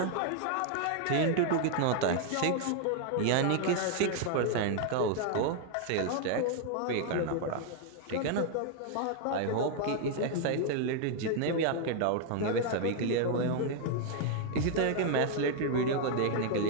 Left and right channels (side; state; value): both; different; correlation 0.00